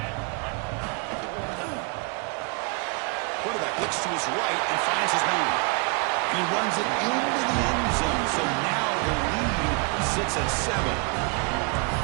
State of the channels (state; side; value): quieter; left; 31.1 dB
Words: Quarterback looks to his right and finds his man. And he runs it into the end zone, so now the lead sits at 7.